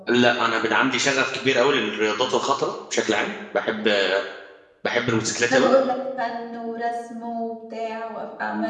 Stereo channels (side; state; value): both; identical; correlation 1.00